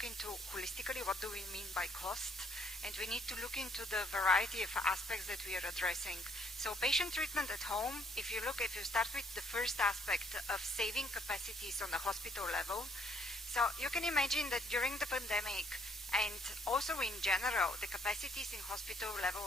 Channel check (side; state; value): both; normal; correlation 0.66